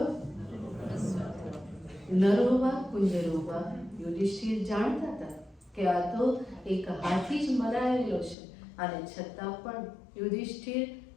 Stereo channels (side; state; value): right; drops out; at 8.3 s